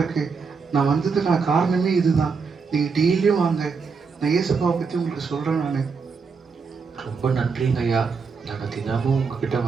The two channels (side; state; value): left; quieter; 5.2 dB